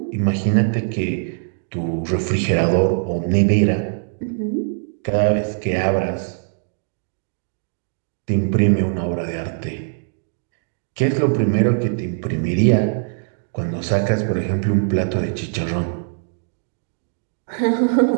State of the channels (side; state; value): left; silent; digital silence